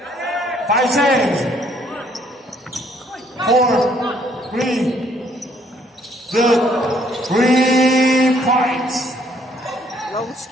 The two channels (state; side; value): normal; both; correlation 0.65